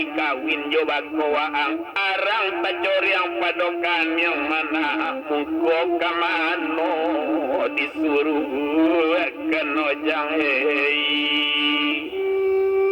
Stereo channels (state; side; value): identical; both; correlation 1.00